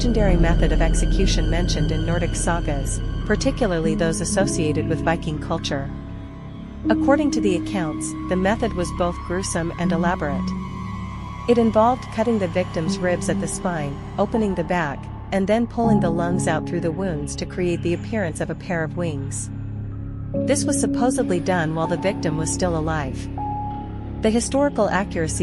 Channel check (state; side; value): identical; both; correlation 1.00